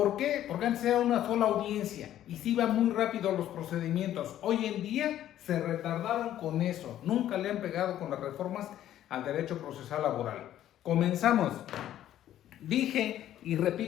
qué? Porque antes era una sola audiencia y se iban muy rápido los procedimientos. Hoy en día se retardaron con eso. Nunca le han pegado con las reformas al derecho procesal laboral. Comenzamos. Dije y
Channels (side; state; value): right; quieter; 12.1 dB